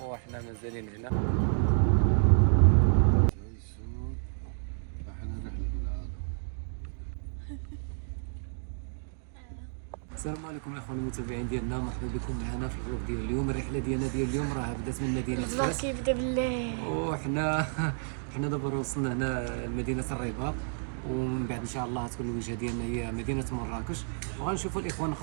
وحنا مازالين هنا. السلام عليكم الاخوان المتابعين ديالنا، مرحبا بكم معنا في الفلوق ديال اليوم. الرحله ديالنا ديال اليوم راه بدات من مدينه فاس، كيبدا بالله، وحنا دابا وصلنا هنا لمدينه الرباط، ومن بعد ان شاء الله تكون الوجهه ديالنا هي مدينه مراكش، وغنشوفوا الاخوان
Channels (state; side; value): silent; left; digital silence